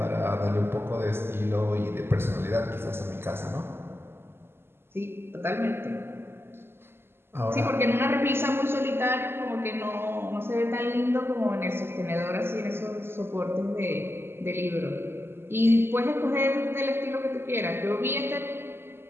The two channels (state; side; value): late; left; 0.11 ms